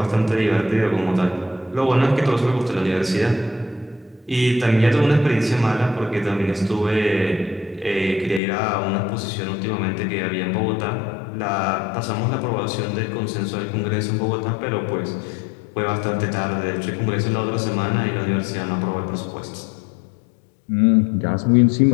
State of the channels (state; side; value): drops out; right; at 8.4 s